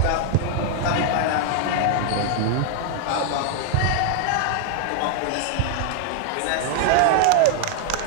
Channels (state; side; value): different; both; correlation 0.00